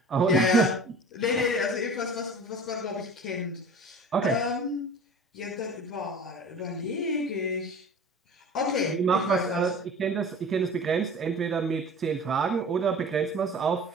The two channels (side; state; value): both; normal; correlation 0.41